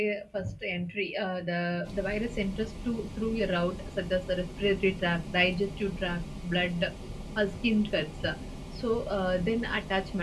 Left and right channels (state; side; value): identical; both; correlation 1.00